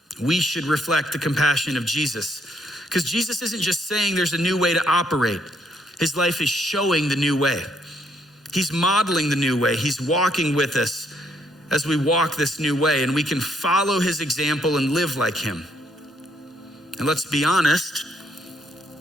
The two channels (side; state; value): both; normal; correlation 0.71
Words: we should reflect the compassion of Jesus. Because Jesus isn't just saying there's a new way to operate. His life is showing the new way. He's modeling the new way. He's walking with us as we walk this new way, and we can follow his example and live like him. And let's be honest,